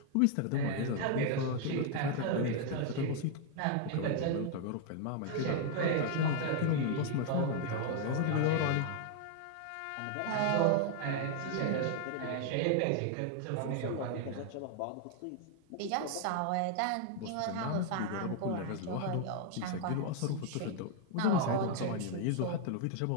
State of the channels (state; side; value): different; both; correlation 0.00